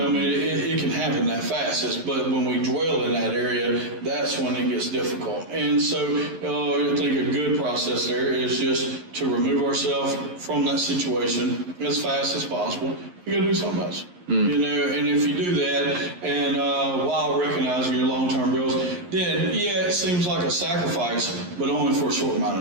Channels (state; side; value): late; left; 11 ms